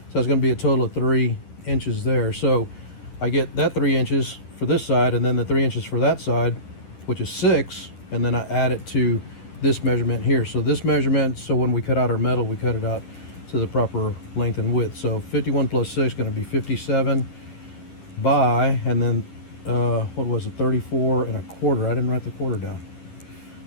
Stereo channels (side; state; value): right; late; 10 ms